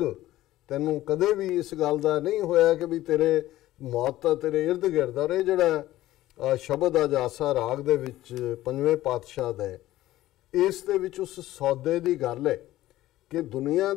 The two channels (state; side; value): quieter; right; 15.3 dB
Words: ਤੈਨੂੰ ਕਦੇ ਵੀ ਇਸ ਗੱਲ ਦਾ ਨਹੀਂ ਹੋਇਆ ਕਿ ਵੀ ਤੇਰੇ ਮੌਤ ਤਾਂ ਤੇਰੇ ਇਰਦ ਗਿਰਦ। ਔਰ ਇਹ ਜਿਹੜਾ ਸ਼ਬਦ ਆ ਜਾਸਾ ਰਾਗ ਦੇ ਵਿੱਚ ਪੰਜਵੇਂ ਪਾਤਸ਼ਾਹ ਦਾ, ਇਸ ਦੇ ਵਿੱਚ ਉਸ ਸੌਦੇ ਦੀ ਗੱਲ ਹੈ ਕਿ ਦੁਨੀਆ